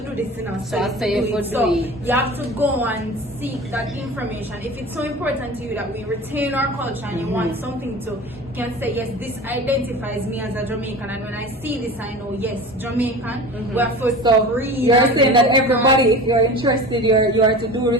do this, So I say you could So do it. you have to go and seek that information. If it's so important to you that we retain our culture and you want something to, you can say, yes, this identifies me as a Jamaican, and when I see this, I know, yes, Jamaican. We have to read. You're and saying that look everybody, if you're interested, you are to do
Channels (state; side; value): normal; both; correlation 0.35